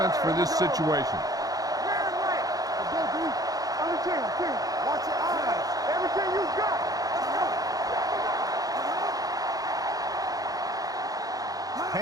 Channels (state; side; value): late; left; 0.18 ms